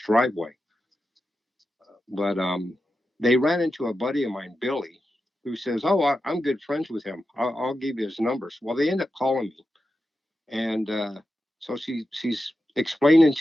But they ran into a buddy of mine, Billy, who says, "Oh, I'm good friends with him. I'll give you his numbers." Well, they end up calling me, and so she's explaining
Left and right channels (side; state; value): both; normal; correlation 0.90